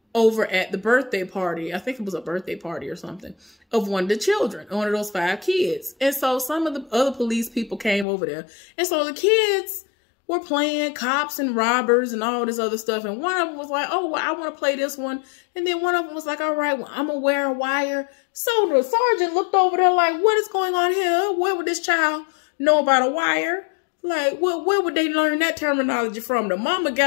over at the birthday party. I think it was a birthday party or something of one of the children, one of those 5 kids. And so some of the other police people came over there. And so the kids were playing cops and robbers and all this other stuff. And one of them was like, oh, well, I want to play this one. And then one of them was like, all right, well, I'm going to wear a wire. So the sergeant looked over there like, what is going on here? Where would this child know about a wire? Like, where would they learn that terminology from? The mama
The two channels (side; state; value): right; drops out; at 8.1 s